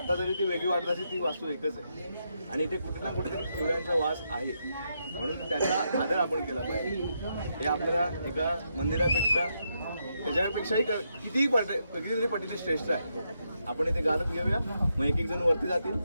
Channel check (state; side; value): inverted; both; correlation -0.81